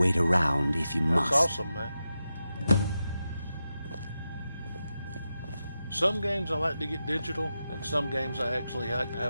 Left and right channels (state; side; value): inverted; both; correlation -0.90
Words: around if you must. That's awesome, man. Some games I like to get digital, and some games I actually like to